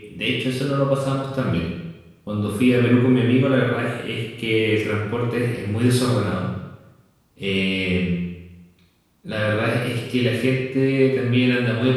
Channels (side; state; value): both; identical; correlation 1.00